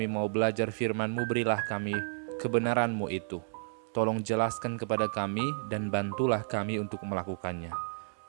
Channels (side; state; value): left; silent; digital silence